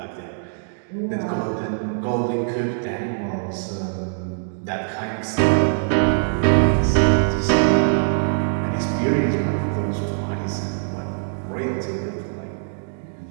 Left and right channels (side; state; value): left; silent; digital silence